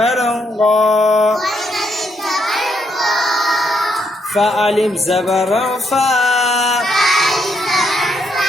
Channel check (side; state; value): both; normal; correlation 0.76